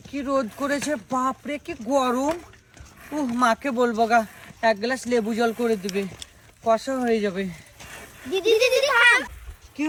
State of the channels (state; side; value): identical; both; correlation 1.00